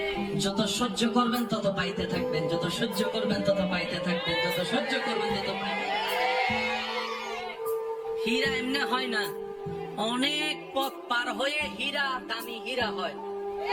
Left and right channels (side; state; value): both; identical; correlation 1.00